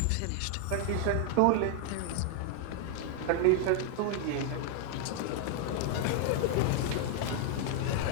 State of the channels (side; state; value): both; different; correlation 0.00